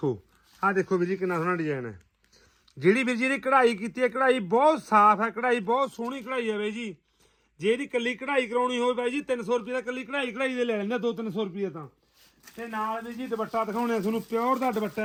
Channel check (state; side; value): identical; both; correlation 1.00